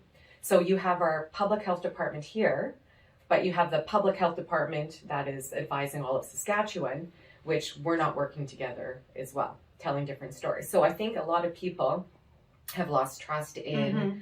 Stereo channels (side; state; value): both; identical; correlation 1.00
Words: So you have our public health department here, but you have the public health department that is advising all of Saskatchewan, which we're not working together as well, telling different stories. So I think a lot of people have lost trust in